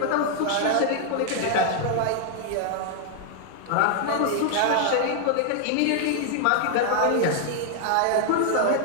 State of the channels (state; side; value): different; both; correlation 0.00